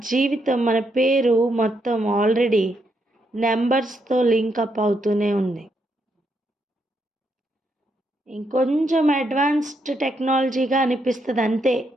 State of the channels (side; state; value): both; normal; correlation 0.78